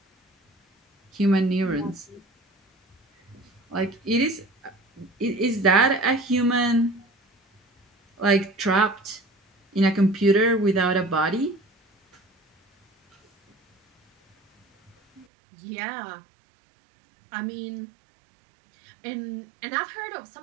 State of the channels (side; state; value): left; drops out; at 15.2 s